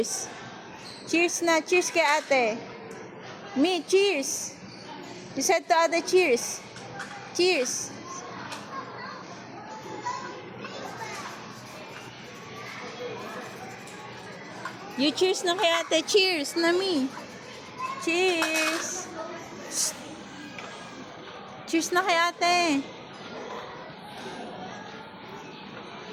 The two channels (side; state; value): both; identical; correlation 1.00